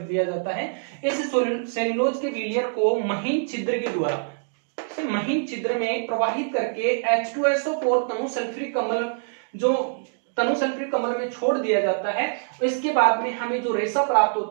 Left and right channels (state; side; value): silent; left; digital silence